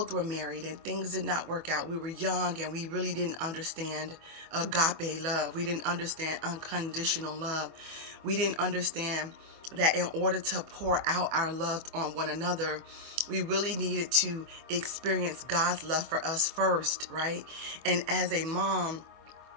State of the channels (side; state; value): left; late; 24 ms